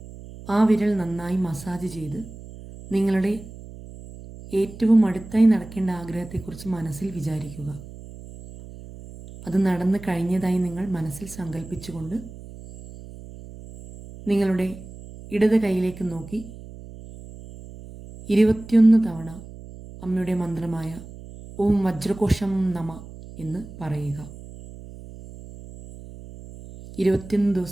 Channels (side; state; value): right; noise; hum, 15 dB below the sound